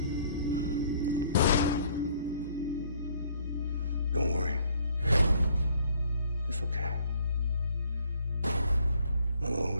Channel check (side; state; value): both; inverted; correlation -0.61